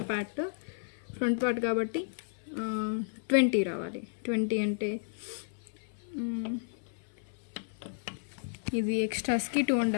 పార్ట్ కాబట్టి 20 రావాలి. 20 అంటే ఇది ఎక్స్ట్రాస్కి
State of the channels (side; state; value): right; silent; 56 dB below the other